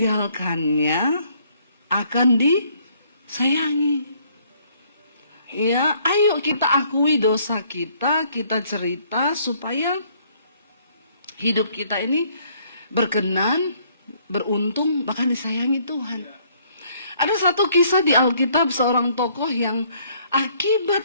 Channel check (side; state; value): both; inverted; correlation -0.64